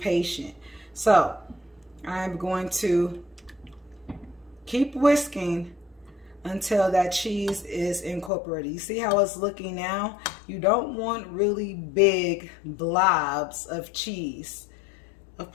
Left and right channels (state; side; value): drops out; right; at 8.3 s